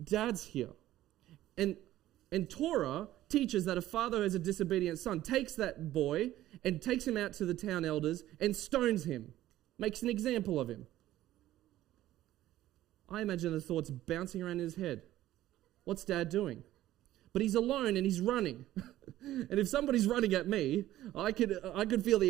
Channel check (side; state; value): left; quieter; 14.2 dB